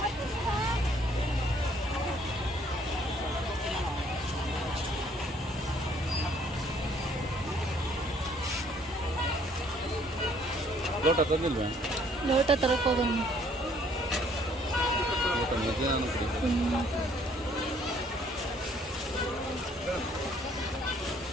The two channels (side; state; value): both; normal; correlation 0.62